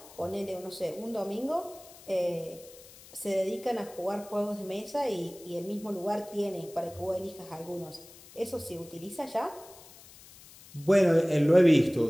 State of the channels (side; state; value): left; noise; hiss, 21 dB below the sound